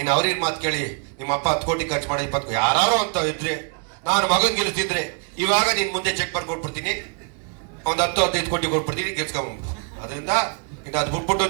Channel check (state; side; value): quieter; left; 39.2 dB